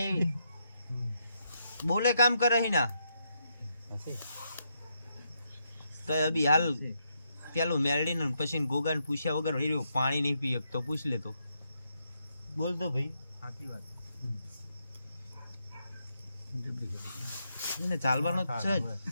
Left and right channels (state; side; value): inverted; both; correlation -0.80